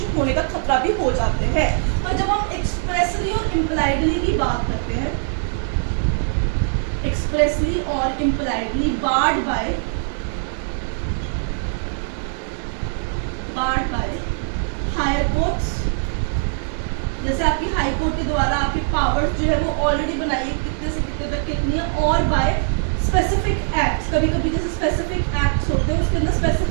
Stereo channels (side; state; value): left; silent; 60 dB below the other